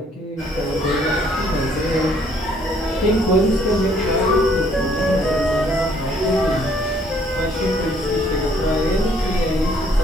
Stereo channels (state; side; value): normal; both; correlation 0.64